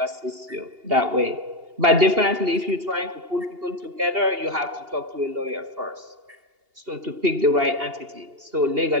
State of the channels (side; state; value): left; late; 2.8 ms